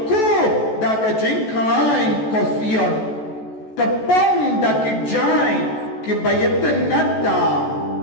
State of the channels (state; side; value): late; right; 14 ms